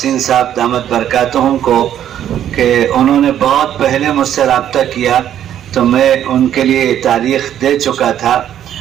صاحب دامت برکاتہم کو کہ انہوں نے بہت پہلے مجھ سے رابطہ کیا تو میں ان کے لیے تاریخ دے چکا تھا،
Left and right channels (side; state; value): left; quieter; 10.6 dB